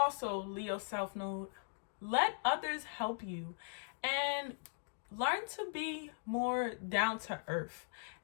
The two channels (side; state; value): right; silent; digital silence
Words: Leo South Node, let others help you and learn to be more down to earth